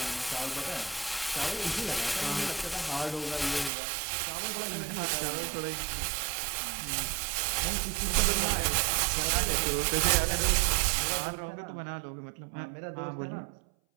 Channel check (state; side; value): drops out; left; at 3.7 s